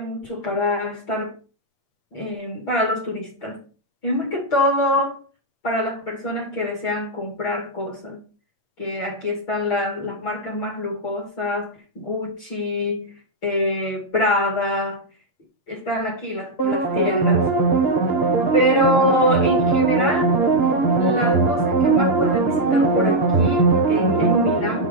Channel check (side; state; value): right; late; 8.5 ms